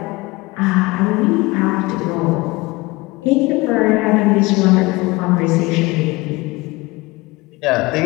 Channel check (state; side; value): quieter; right; 22.4 dB